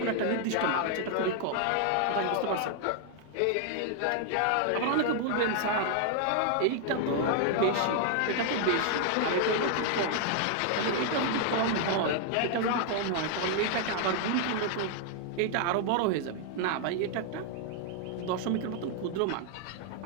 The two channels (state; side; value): different; both; correlation 0.00